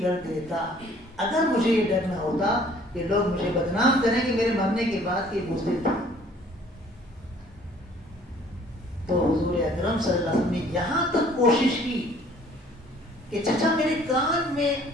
کر دیتا اگر مجھے یہ ڈر نہ ہوتا کہ لوگ مجھے بدنام کریں کہ میرے مرنے کے بعد یہ بزدل تھا. تو حضور اکرم صلی اللہ علیہ وسلم نے یہاں تک کوشش کی کہ چچا میرے کان میں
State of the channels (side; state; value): both; normal; correlation 0.56